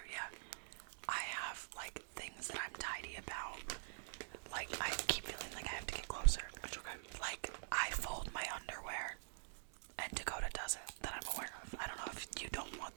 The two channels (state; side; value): silent; left; digital silence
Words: yeah. I have, like, things that I'm tidy about. Like, I keep feeling like I have to get closer. It's okay. Like, I fold my underwear, and Dakota doesn't, that I'm aware of. I don't know if you don't want